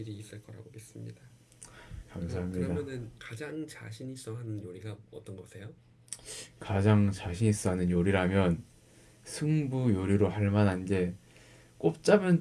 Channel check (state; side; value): identical; both; correlation 1.00